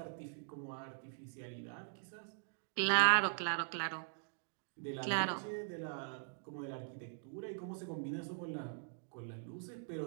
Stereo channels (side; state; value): left; silent; digital silence